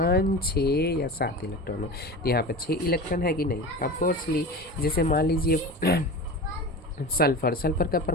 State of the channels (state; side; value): normal; both; correlation 0.30